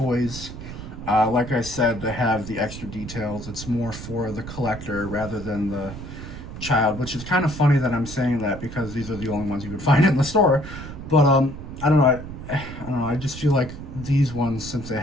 Like I said, they have the extra details. It's more for the collector rather than the child, which is kind of funny that I'm saying that because these are the only ones you could find in the store. But I don't know. I just feel like these ones, since they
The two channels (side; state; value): right; noise; rumble, 11 dB below the sound